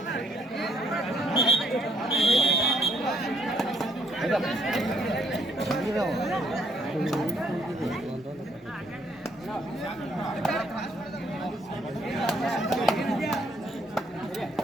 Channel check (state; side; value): normal; both; correlation 0.65